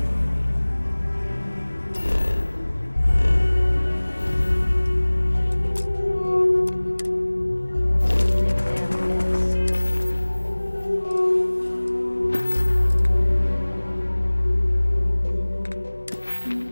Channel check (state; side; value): inverted; both; correlation -1.00